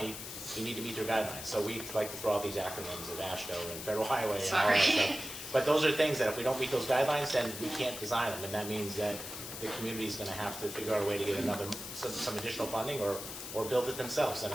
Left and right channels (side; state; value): left; noise; hiss, 9 dB below the sound